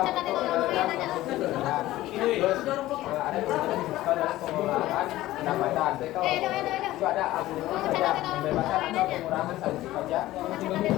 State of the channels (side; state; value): right; quieter; 16.0 dB